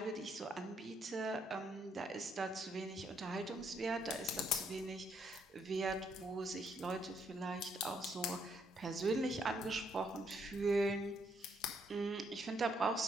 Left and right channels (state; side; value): normal; both; correlation 0.72